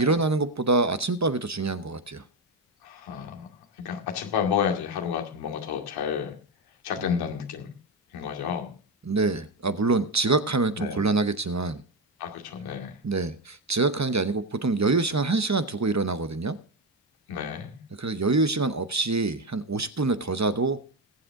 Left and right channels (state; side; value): normal; both; correlation 0.11